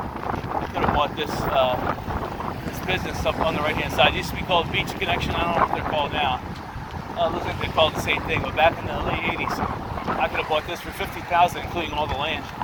I could have bought this business up on the right-hand side. It used to be called Beach Connection. I don't know what they're called now. It looks like they're called the same thing, but back in the late 80s, I could have bought this for $50,000, including all the land.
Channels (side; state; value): both; identical; correlation 1.00